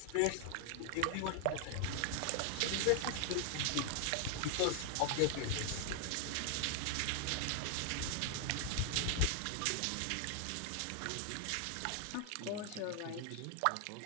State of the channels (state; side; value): different; both; correlation 0.00